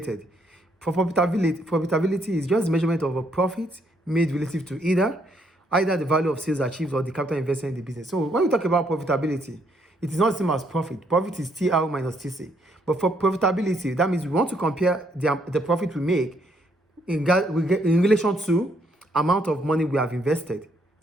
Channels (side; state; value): both; normal; correlation 0.71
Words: For profitability is just measurement of a profit made relative to either the value of sales achieved or the capital invested in the business. So when we talk about profitability, it is not the same as profit. Profit is TR minus TC. But for profitability, that means we want to compare the profit we make in relation to amount of money we have invested